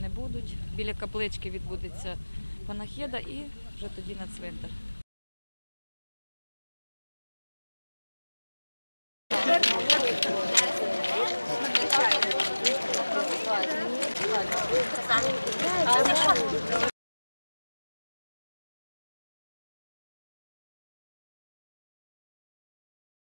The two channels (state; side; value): inverted; both; correlation -1.00